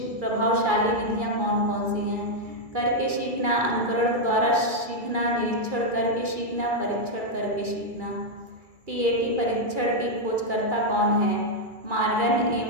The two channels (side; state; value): left; late; 2.4 ms